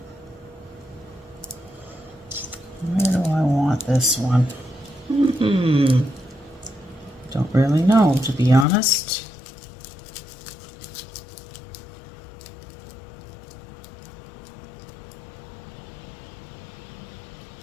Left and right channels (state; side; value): drops out; right; at 8.7 s